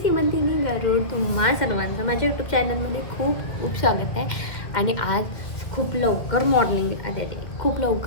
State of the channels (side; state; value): right; late; 1.8 ms